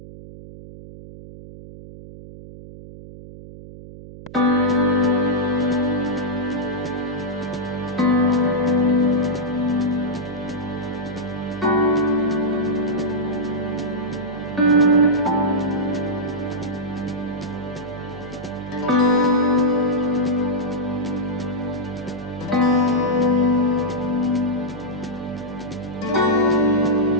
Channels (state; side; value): noise; right; hum, 15 dB below the sound